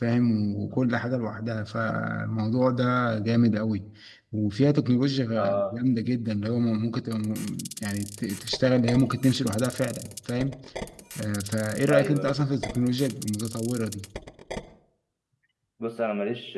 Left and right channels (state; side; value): identical; both; correlation 1.00